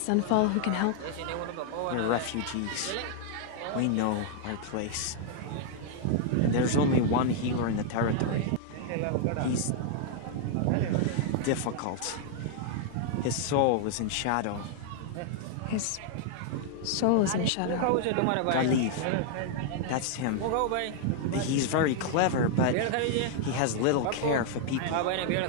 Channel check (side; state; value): both; different; correlation -0.01